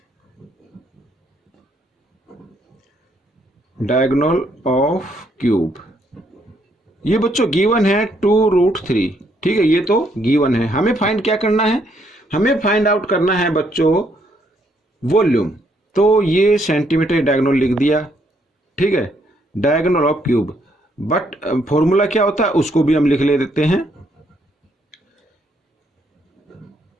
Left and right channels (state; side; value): normal; both; correlation 0.71